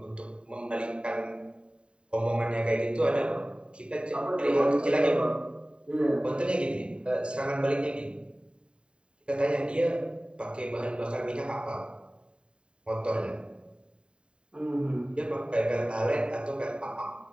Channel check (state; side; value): late; left; 0.052 ms